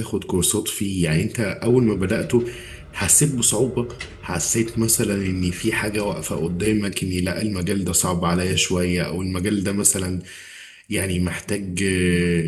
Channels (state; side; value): identical; both; correlation 1.00